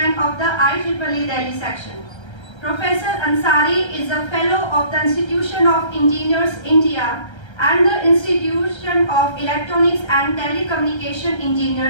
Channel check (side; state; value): right; late; 1.3 ms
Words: of the IEEE Delhi section. Professor Ansari is a Fellow of the Institution of Engineers India and the Institution of Electronics and Telecommunication